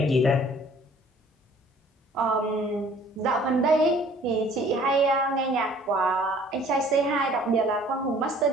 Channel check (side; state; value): both; normal; correlation 0.54